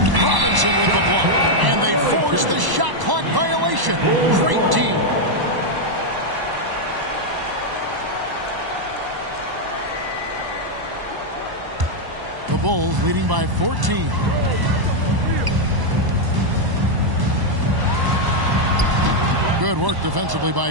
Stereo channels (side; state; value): left; late; 1.0 ms